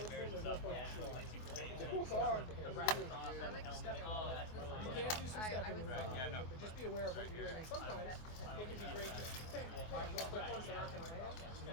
to him, there's no point in shooting. You can do some stepping with it, but just be aware of what you're doing. And sometimes it can be great just bam, bam, real quick ones that aren't going to land. You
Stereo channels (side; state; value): right; late; 24 ms